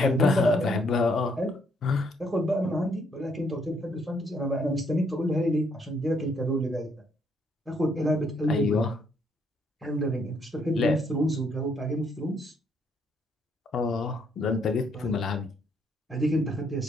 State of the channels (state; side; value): normal; both; correlation 0.71